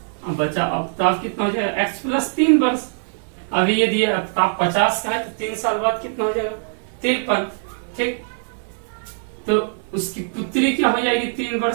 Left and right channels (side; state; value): left; silent; digital silence